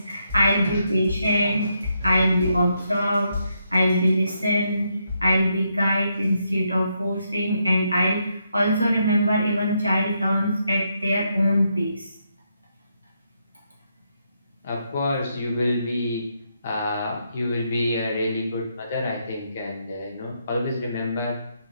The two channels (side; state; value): both; inverted; correlation -0.79